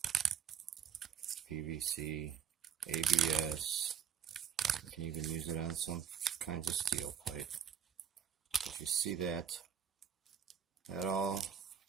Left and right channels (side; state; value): left; quieter; 8.0 dB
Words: PVC, ABS. You can even use it on some kinds of steel pipe. If you see that, that all